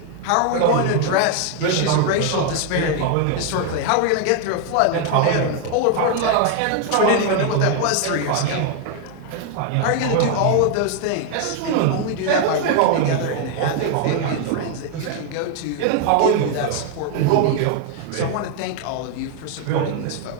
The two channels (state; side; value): different; both; correlation 0.01